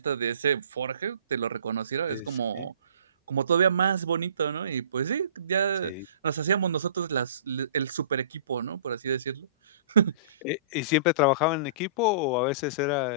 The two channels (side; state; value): both; inverted; correlation -0.46